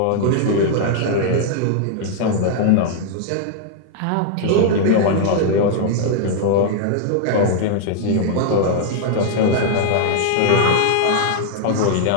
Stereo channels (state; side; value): different; both; correlation -0.01